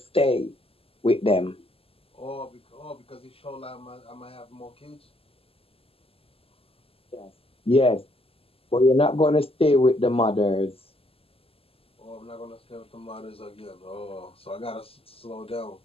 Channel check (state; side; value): late; right; 0.28 ms